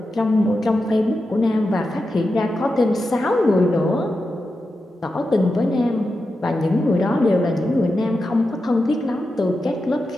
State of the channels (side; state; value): both; normal; correlation 0.90